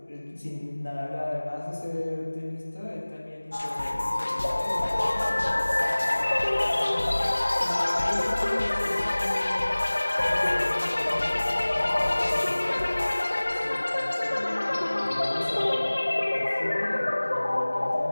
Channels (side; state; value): both; inverted; correlation -1.00